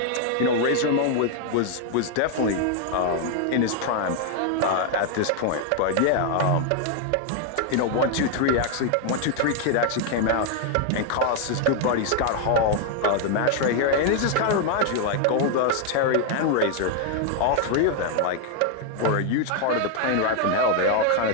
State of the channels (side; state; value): both; different; correlation 0.00